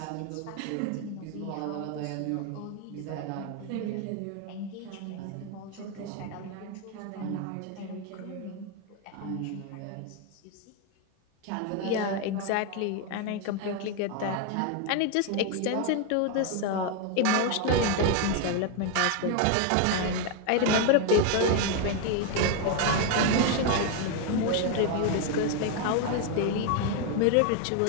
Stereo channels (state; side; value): different; both; correlation 0.01